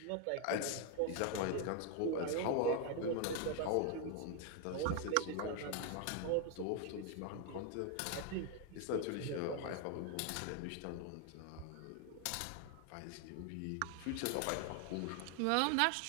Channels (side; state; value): both; different; correlation 0.00